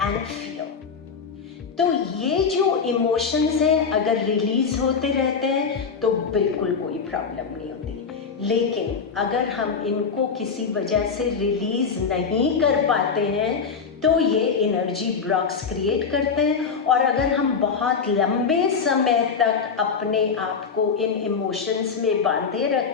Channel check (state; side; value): quieter; right; 5.7 dB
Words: and fear. तो ये जो इमोशंस हैं अगर रिलीज होते रहते हैं तो बिल्कुल कोई प्रॉब्लम नहीं होती, लेकिन अगर हम इनको किसी वजह से रिलीज नहीं कर पाते हैं तो ये एनर्जी ब्लॉक्स क्रिएट करते हैं, और अगर हम बहुत लंबे समय तक अपने आप को इन इमोशंस में बांधे